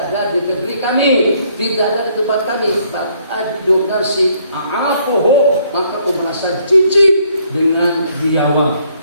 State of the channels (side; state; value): both; inverted; correlation -0.67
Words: ada di negeri kami, tidak ada di tempat kami. Ajudu nasi a'afuhu, maka aku merasa jijik dengan biawak.